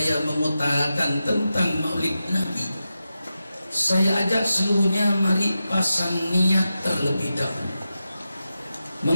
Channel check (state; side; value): inverted; both; correlation -0.91